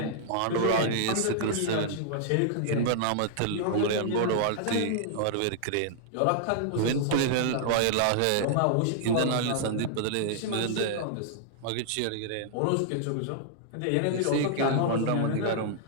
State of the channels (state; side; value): different; both; correlation -0.01